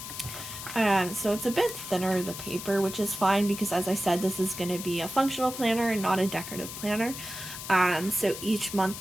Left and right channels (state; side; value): noise; left; hiss, 9 dB below the sound